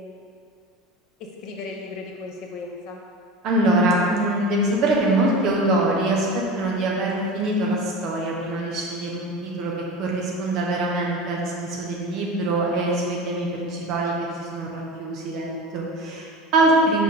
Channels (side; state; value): both; normal; correlation 0.31